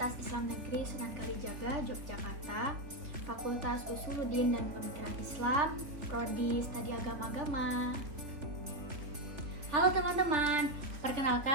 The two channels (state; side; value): late; left; 3.4 ms